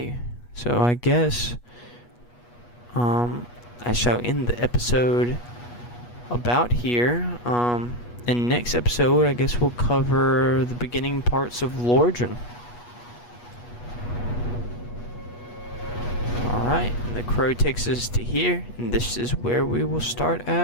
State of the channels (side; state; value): right; late; 8.3 ms